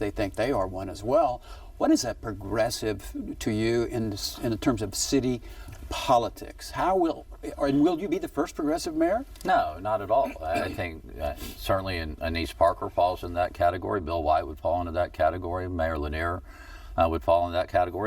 think they are one as well. What is that progressive to you in terms of city politics? Will you be the first progressive mayor? No, not at all. I think certainly Anise Parker falls in that category. Bill White would fall into that category. Mayor Lanier would fall in that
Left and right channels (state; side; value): identical; both; correlation 1.00